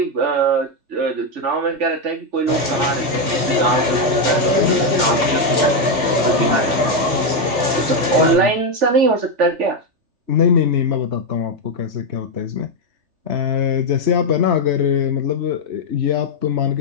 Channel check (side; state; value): left; late; 3.3 ms